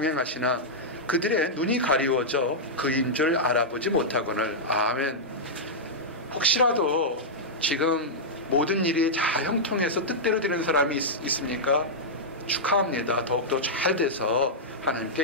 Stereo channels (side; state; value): both; normal; correlation -0.09